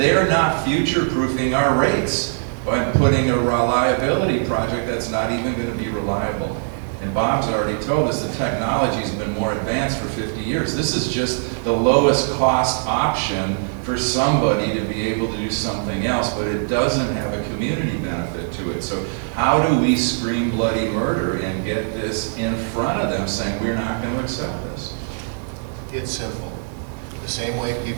not future-proofing our rates by putting a reliability project that's not even gonna be reliable. And Bob's already told us the technology's been more advanced for 50 years. This is just the lowest cost option for somebody to be able to do something else, but it doesn't have a community benefit to it. So how do we scream bloody murder and get this in front of them saying we're not going to accept this? It's simple. The same way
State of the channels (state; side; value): silent; left; digital silence